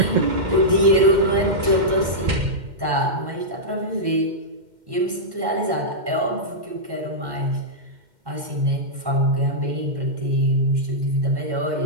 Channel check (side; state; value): left; late; 2.1 ms